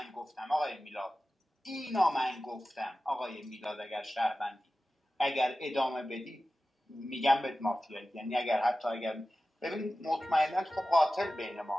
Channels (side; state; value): both; normal; correlation 0.95